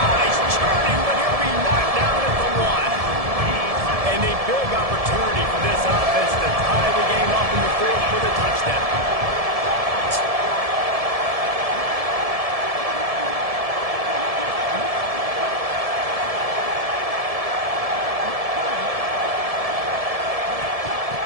churning, but he'll be knocked down at the 1. And a big opportunity for this offense to tie the game up in the 4th for the touchdown.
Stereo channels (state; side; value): late; left; 1.7 ms